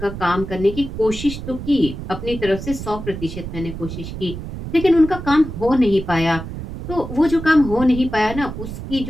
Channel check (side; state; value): right; noise; rumble, 9 dB below the sound